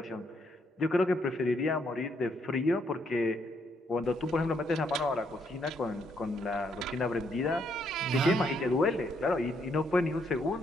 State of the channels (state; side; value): normal; both; correlation 0.74